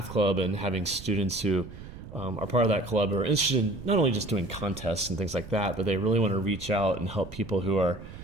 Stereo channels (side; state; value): right; noise; rumble, 14 dB below the sound